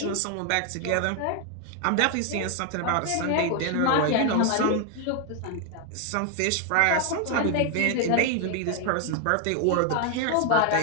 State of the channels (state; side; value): different; both; correlation 0.00